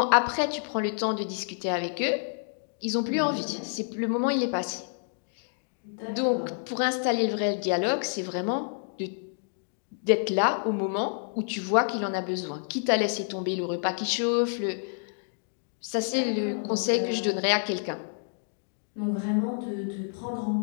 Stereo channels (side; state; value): right; silent; digital silence